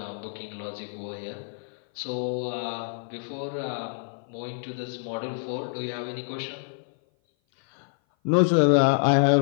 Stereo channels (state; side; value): silent; right; 56 dB below the other